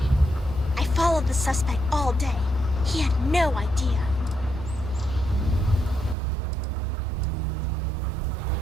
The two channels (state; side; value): drops out; left; at 6.2 s